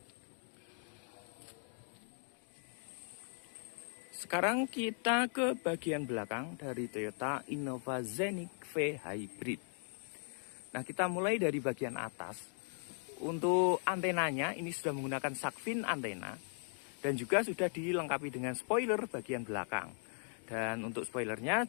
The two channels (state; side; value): silent; right; 52 dB below the other